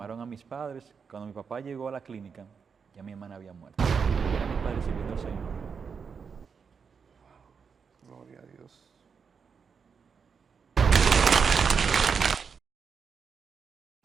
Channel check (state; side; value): quieter; left; 6.0 dB